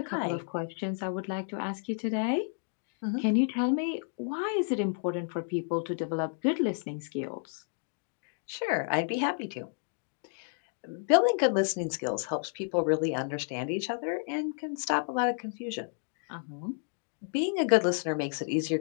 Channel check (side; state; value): right; silent; 57 dB below the other